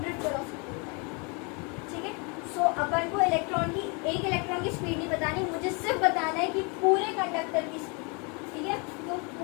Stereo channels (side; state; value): right; quieter; 32.6 dB